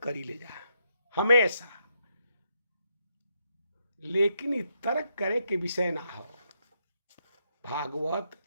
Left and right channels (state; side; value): inverted; both; correlation -0.78